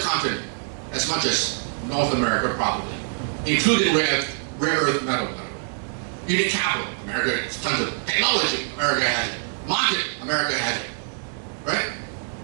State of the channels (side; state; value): left; silent; 62 dB below the other